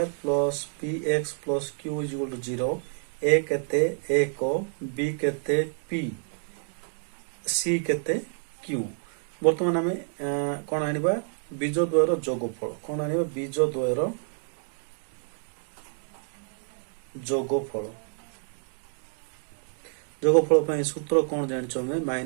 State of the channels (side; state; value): left; silent; 59 dB below the other